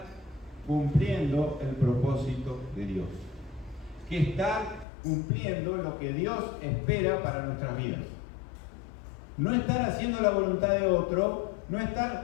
cumpliendo el propósito de Dios. Que estar cumpliendo lo que Dios espera para nuestras vidas. No estar haciendo la voluntad de otro, no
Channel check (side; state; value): right; drops out; at 4.9 s